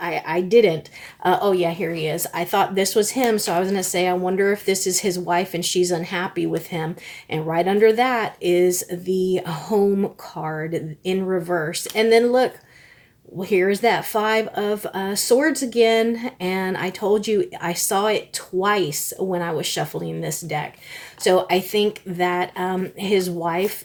didn't. Oh yeah, here he is. I thought this was him, so I was gonna say, I wonder if this is his wife and she's unhappy with him. And right under that is the Home card in reverse. And then look, well, here's that Five of Swords again, and I told you I saw it twice when I was shuffling this deck. So I think that his wife,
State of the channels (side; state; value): both; identical; correlation 1.00